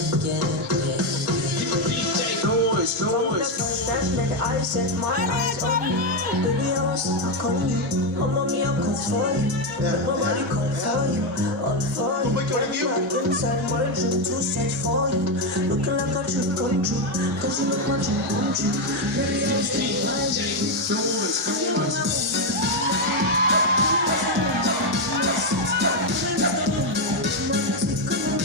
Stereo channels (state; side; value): normal; both; correlation 0.06